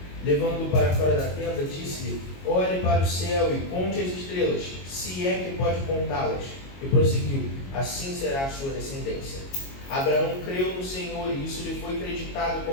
Levando-o para fora da tenda, disse-lhe: olhe para o céu e conte as estrelas, se é que pode contá-las. E prosseguiu: assim será a sua descendência. Abraão creu no Senhor, e isso lhe foi creditado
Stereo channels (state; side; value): late; right; 22 ms